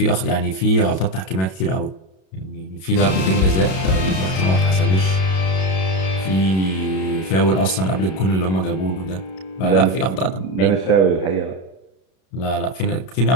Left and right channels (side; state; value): right; late; 32 ms